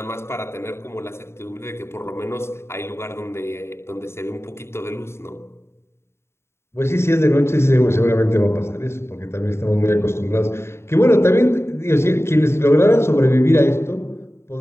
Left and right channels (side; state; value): right; late; 0.12 ms